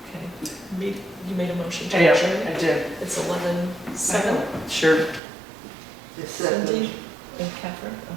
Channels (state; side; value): drops out; left; at 5.2 s